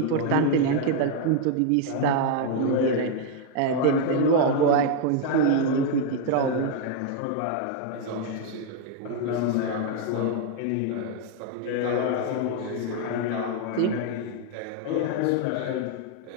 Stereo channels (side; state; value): both; different; correlation 0.00